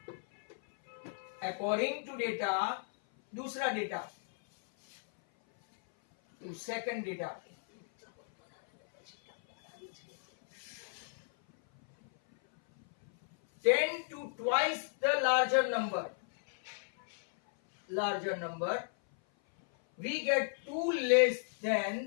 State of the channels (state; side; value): silent; right; 55 dB below the other